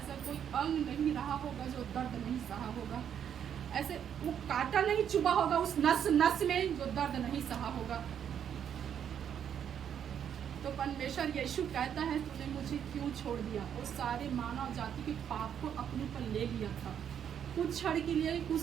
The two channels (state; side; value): quieter; left; 8.8 dB